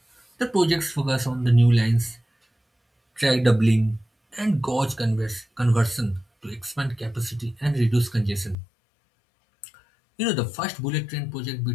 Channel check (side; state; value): right; drops out; at 8.6 s